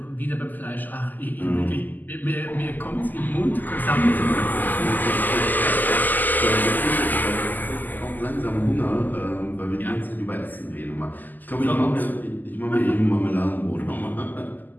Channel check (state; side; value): late; right; 0.085 ms